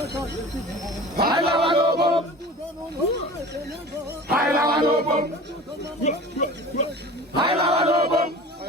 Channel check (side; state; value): both; normal; correlation 0.38